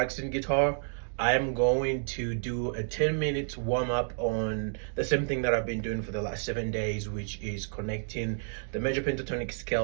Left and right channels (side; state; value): left; silent; digital silence